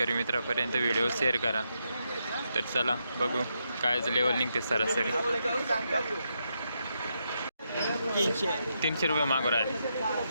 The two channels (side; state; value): both; inverted; correlation -0.82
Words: मित्रापर्यंत व्हिडिओ शेअर करा. तर चला बघू कायच लेवल निघते सरासरी. 300 रुपये मागू राहिले.